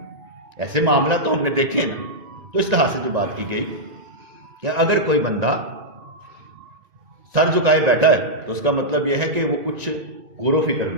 ایسے معاملہ تو ہم نے دیکھے نا، تو اس طرح سے جو بات کی گئی کہ اگر کوئی بندہ سر جھکائے بیٹھا ہے تو اس کا مطلب یہ ہے کہ وہ کچھ غور و فکر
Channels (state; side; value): late; left; 1.9 ms